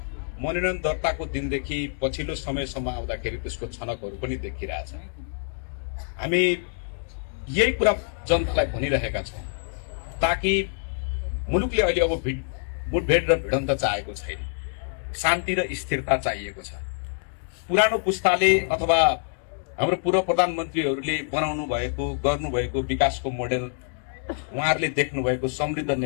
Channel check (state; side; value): silent; right; digital silence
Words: मनोनयन दर्ताको दिनदेखि पछिल्लो समयसम्म आउँदाखेरि त्यसको छनकहरू पनि देखिरहेछ। हामी यही कुरा जनतालाई भनिरहेका छौँ ताकि मुलुकले अहिले अब मुठभेड र भिडन्त चाहेको छैन, शान्ति र स्थिरता चाहिएको छ। पुरानो पुस्ताले अथवा हाम्रो पूर्व प्रधानमन्त्रीहरूले बनाउनु भएको गर्नुभएको विकासको मोडेल, उहाँहरूले देख्नु भएको समृद्ध